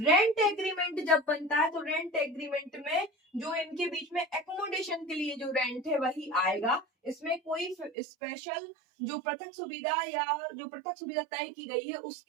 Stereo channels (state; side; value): drops out; left; at 7.9 s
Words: एग्रीमेंट जब बनता है तो रेंट एग्रीमेंट में जो इनके बीच में एकोमोडेशन के लिए जो रेंट है वही आएगा। इसमें कोई स्पेशल जो पृथक सुविधा या जो पृथक सुविधा तय की गई है